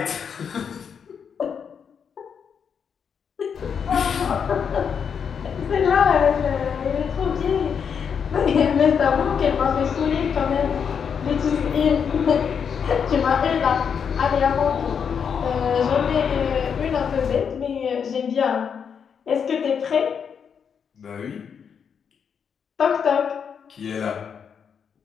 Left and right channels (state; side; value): quieter; right; 7.0 dB